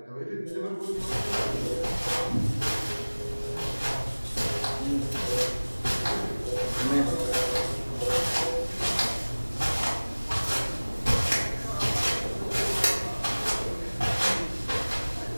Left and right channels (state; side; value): inverted; both; correlation -1.00